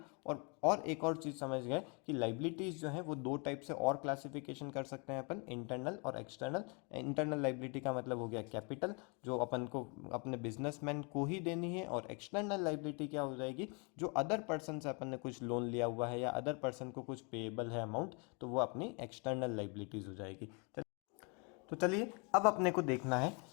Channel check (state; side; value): quieter; right; 33.8 dB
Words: और एक और चीज़ समझ गए कि लाइबिलिटीज़ जो है वो दो टाइप से और क्लासिफिकेशन कर सकते हैं अपन, इंटरनल और एक्सटर्नल। इंटरनल लाइबिलिटी का मतलब हो गया कैपिटल जो अपन को अपने बिजनेसमैन को ही देनी है, और एक्सटर्नल लाइबिलिटी क्या हो जाएगी, जो अदर पर्सन से अपन ने कुछ लोन लिया हुआ है या अदर पर्सन को कुछ पेएबल है अमाउंट, तो वो अपनी एक्सटर्नल लाइबिलिटीज़ हो जाएगी। तो चलिए अब अपने को देखना है